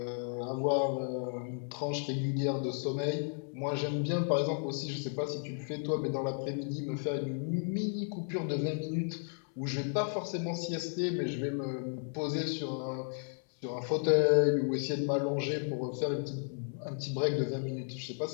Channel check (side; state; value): right; silent; 55 dB below the other